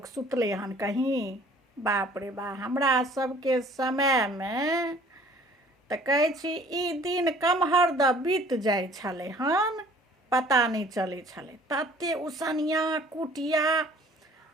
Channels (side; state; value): both; normal; correlation 0.53